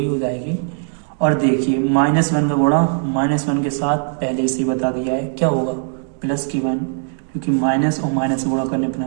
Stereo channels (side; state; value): left; silent; 59 dB below the other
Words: हो जाएगी। और देखिए -1 का गुणा -1 के साथ पहले से बता दिया है क्या होगा, +1, क्योंकि माइनस और माइनस गुणा करने पर